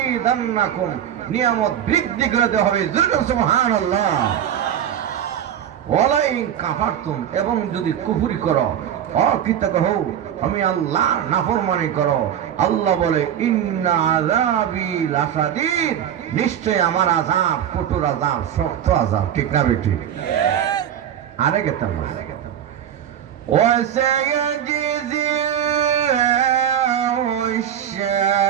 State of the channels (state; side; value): quieter; left; 9.8 dB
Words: নিয়ামত বৃদ্ধি করে দেওয়া হবে। সুবহানাল্লাহ। ওয়ালাইন কাফারতুম, এবং যদি কুফরি করো, অকৃতজ্ঞ হও, আমি আল্লাহর নাফরমানি করো, আল্লাহ বলে ইন্না আযাবি লাশাদীদ, নিশ্চয় আমার আযাব কঠোর আযাব, শক্ত আযাব। ঠিক না বেটি? আরে গেতাম وسيجزي الله